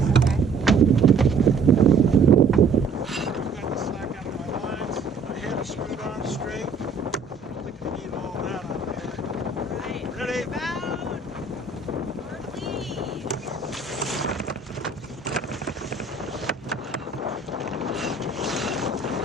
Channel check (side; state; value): left; quieter; 4.2 dB